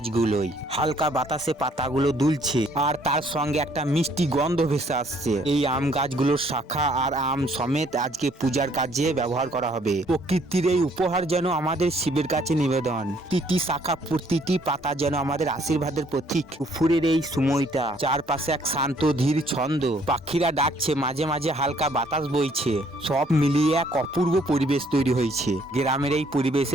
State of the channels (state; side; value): normal; both; correlation 0.64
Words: হালকা বাতাসে পাতাগুলো দুলছে আর তার সঙ্গে একটা মিষ্টি গন্ধ ভেসে আসছে। এই আম গাছগুলোর শাখা আর আম সমেত আজকে পূজার কাজে ব্যবহার করা হবে। প্রকৃতির এই উপহার যেন আমাদের শিবের কাছে নিবেদন। প্রতিটি শাখা, প্রতিটি পাতা যেন আমাদের আশীর্বাদের প্রতীক। দুপুরের এই সময়টা, চারপাশে এক শান্ত ধীর ছন্দ, পাখিরা ডাকছে, মাঝে মাঝে হালকা বাতাস বইছে। সব মিলিয়ে এক অপূর্ব পরিবেশ তৈরি হয়েছে। গ্রামের এই